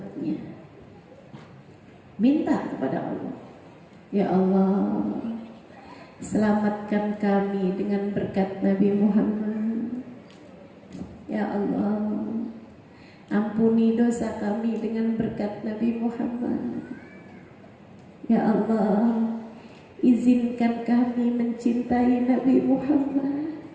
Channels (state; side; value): identical; both; correlation 1.00